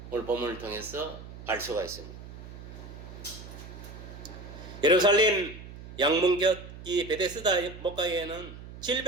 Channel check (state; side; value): noise; right; hum, 14 dB below the sound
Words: 오늘 본문을 통해서 알 수가 있습니다. 예루살렘 양문곁 이 베데스다 목가에는